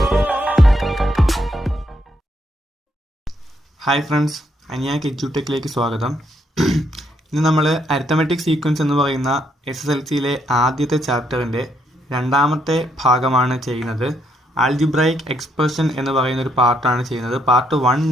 Hi friends, അനിയാക്ക് എഡ്യൂടെക്കിലേക്ക് സ്വാഗതം. ഇന്ന് നമ്മൾ അരിത്തമെറ്റിക് സീക്വൻസ് എന്ന് പറയുന്ന SSLCയിലെ ആദ്യത്തെ ചാപ്റ്ററിൻ്റെ രണ്ടാമത്തെ ഭാഗമാണ് ചെയ്യുന്നത്. ആൽജിബ്രൈക് എക്സ്പ്രഷൻ എന്ന് പറയുന്ന ഒരു പാർട്ടാണ് ചെയ്യുന്നത്. പാർട്ട് 1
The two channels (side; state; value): both; normal; correlation 0.75